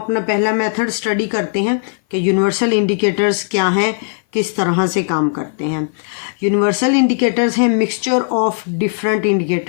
पहला मेथड स्टडी करते हैं कि यूनिवर्सल इंडिकेटर्स क्या हैं, किस तरह से काम करते हैं। यूनिवर्सल इंडिकेटर्स हैं मिक्सचर ऑफ डिफरेंट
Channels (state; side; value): silent; right; 57 dB below the other